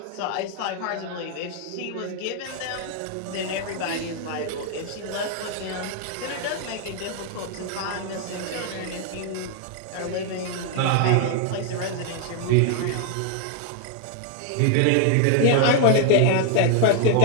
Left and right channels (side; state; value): both; different; correlation 0.00